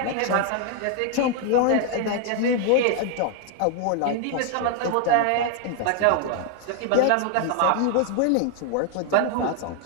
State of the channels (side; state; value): both; different; correlation 0.00